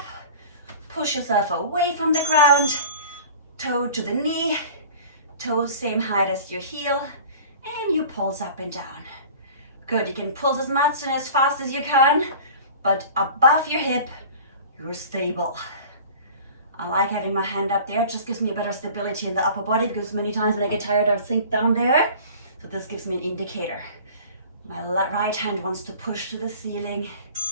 push yourself away from the ground, toe to the knee, toes same height as your heel, and you pulse up and down. Good, you can pulse as much and as fast as you can, but above your hip, you're stable. I like having my hand up there, it just gives me a better stability in the upper body, because many times when I get tired, I sink down there. So this gives me an indicator. My right hand wants to push to the ceiling.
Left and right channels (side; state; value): both; inverted; correlation -0.42